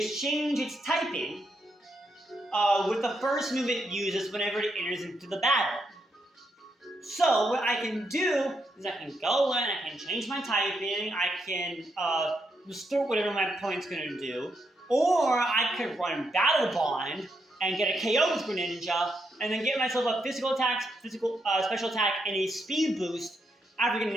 change its typing with the first move it uses whenever it enters into the battle. So what I can do is I can go in, I can change my typing, I can restore whatever my opponent's going to do, or I could run Battle Bond and get a KO with Greninja, and then get myself a physical attack, special attack, and a speed boost after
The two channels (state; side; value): normal; both; correlation 0.80